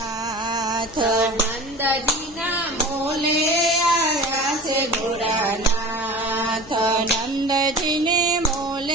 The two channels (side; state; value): left; noise; rumble, 20 dB below the sound